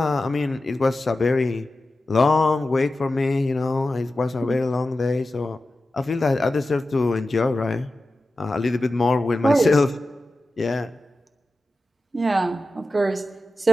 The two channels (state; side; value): normal; both; correlation 0.93